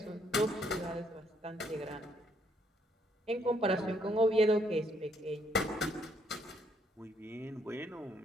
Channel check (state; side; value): normal; both; correlation 0.70